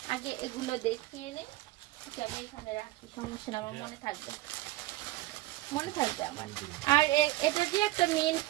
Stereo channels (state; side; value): quieter; left; 18.0 dB